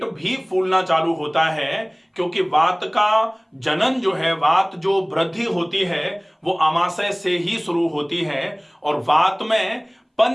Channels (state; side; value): identical; both; correlation 1.00